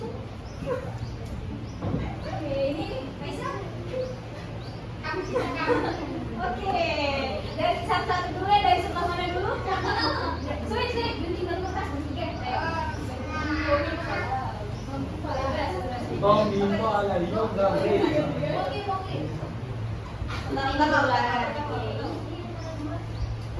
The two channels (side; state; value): both; identical; correlation 1.00